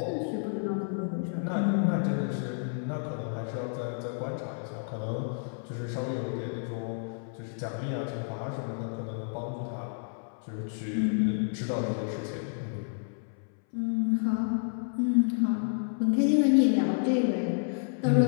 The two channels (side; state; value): right; silent; 58 dB below the other